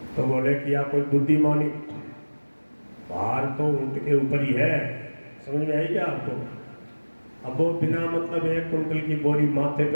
तो बोले कि आप कोई बुद्धिमानी, भार तो ऊँट के ऊपर ही है, समझ में आई क्या आपको? अब वो बिना मतलब 1 क्विंटल की बोरी माथे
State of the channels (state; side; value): inverted; both; correlation -1.00